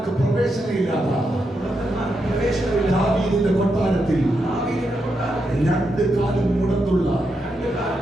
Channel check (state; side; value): normal; both; correlation 0.84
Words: പ്രവേശനമില്ലാത്ത ദാവീദിന്റെ കൊട്ടാരത്തിൽ രണ്ട് കാലും മുടന്തുള്ള